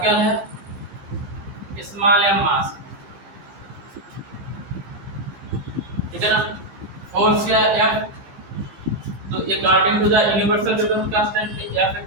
है स्मॉल m मास ठीक है ना फोर्स क्या है F तो according to the universal gravitational constant F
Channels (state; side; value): late; left; 15 ms